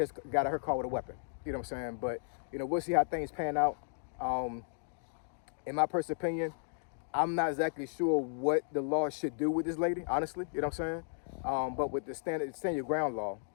got out of her car with a weapon. You know what I'm saying? But you know, we'll see how things pan out. In my personal opinion, I'm not exactly sure what the law should do with this lady, honestly. You know what I'm saying? But with the stand your ground law,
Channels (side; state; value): right; silent; digital silence